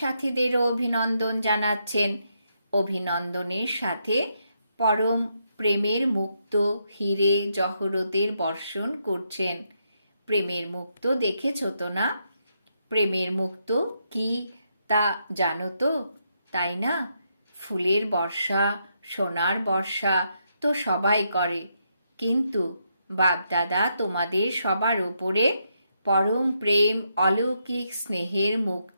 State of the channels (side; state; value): both; inverted; correlation -0.79